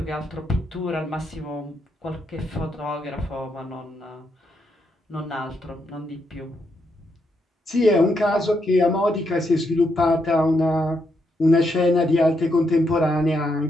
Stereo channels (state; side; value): normal; both; correlation 0.79